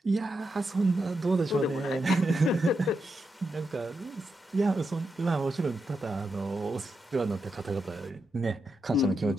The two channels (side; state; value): both; normal; correlation 0.85